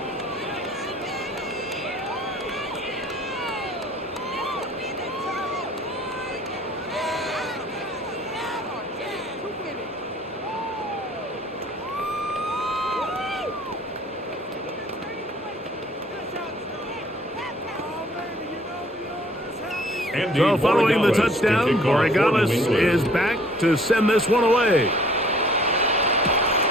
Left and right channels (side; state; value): both; normal; correlation 0.56